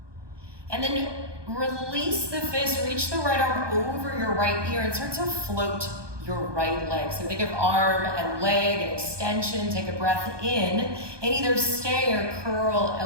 And then release the fist. Reach the right arm over your right ear and start to float your right leg. So think of arm and leg and extension. Take a breath in and either stay or curl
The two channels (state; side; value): late; left; 1.2 ms